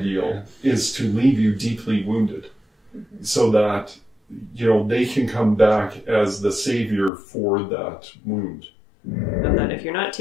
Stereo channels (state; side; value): drops out; right; at 7.1 s